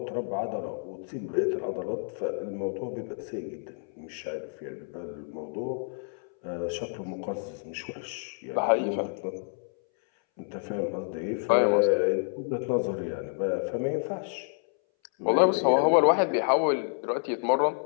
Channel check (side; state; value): right; silent; 59 dB below the other